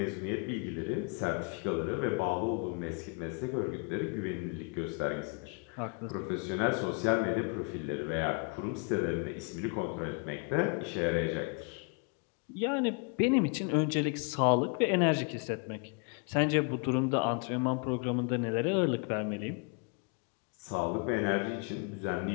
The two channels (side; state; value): right; quieter; 35.9 dB